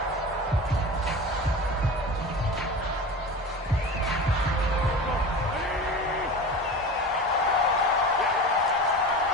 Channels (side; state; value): both; normal; correlation 0.32